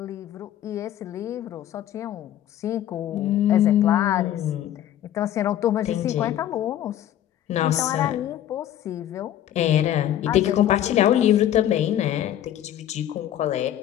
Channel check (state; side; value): quieter; right; 11.6 dB